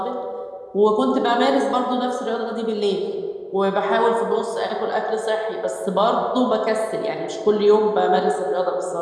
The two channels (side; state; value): both; identical; correlation 1.00